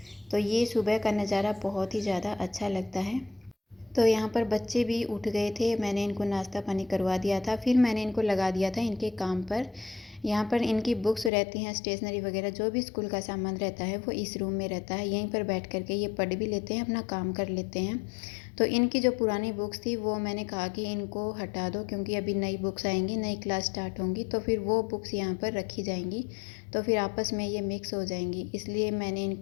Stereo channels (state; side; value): drops out; right; at 11.3 s